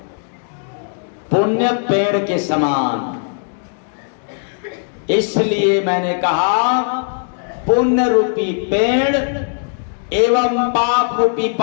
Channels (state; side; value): silent; right; 58 dB below the other